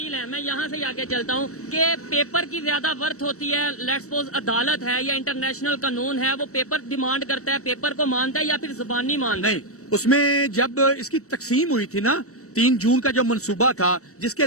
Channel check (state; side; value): late; right; 0.65 ms